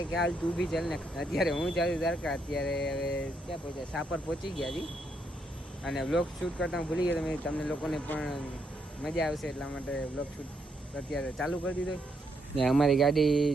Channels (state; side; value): normal; both; correlation 0.77